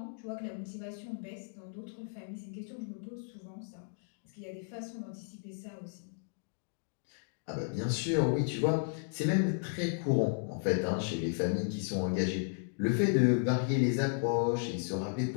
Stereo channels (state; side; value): silent; right; digital silence